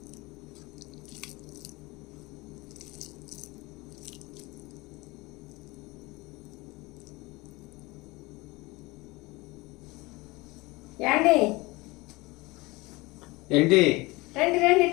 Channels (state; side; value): quieter; right; 22.9 dB